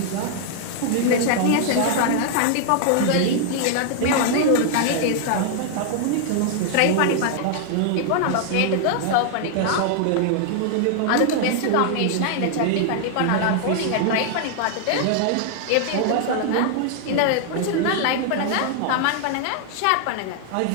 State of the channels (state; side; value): different; both; correlation -0.01